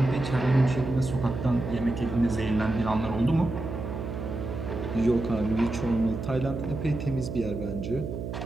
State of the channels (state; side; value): noise; right; hum, 6 dB below the sound